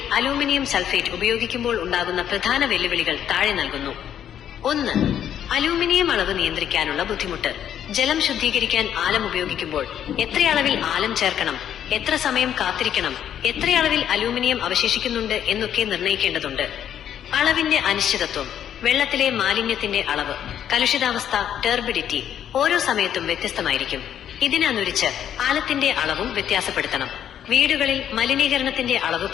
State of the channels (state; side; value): quieter; right; 9.9 dB